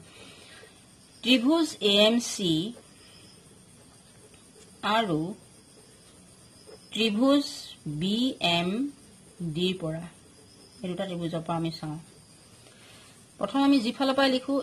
ত্ৰিভুজ AMC আৰু ত্ৰিভুজ BMD ৰ পৰা এই দুটা ত্ৰিভুজৰ পৰা আমি চাওঁ। প্ৰথম আমি যিফালৰ পৰা লিখো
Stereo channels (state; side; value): identical; both; correlation 1.00